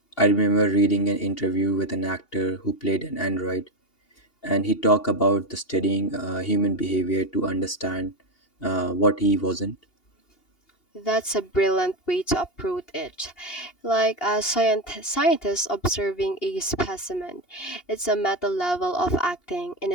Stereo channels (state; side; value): late; right; 2.8 ms